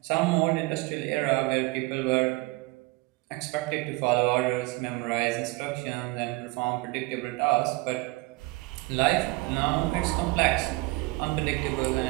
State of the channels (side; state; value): left; quieter; 23.3 dB